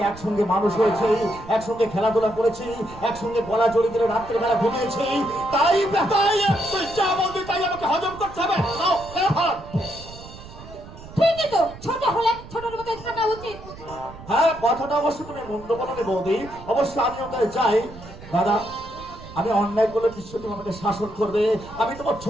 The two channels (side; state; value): right; noise; rumble, 16 dB below the sound